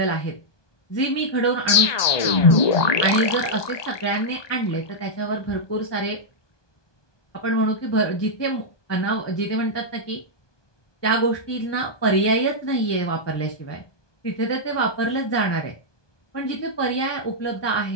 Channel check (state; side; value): late; right; 1.2 ms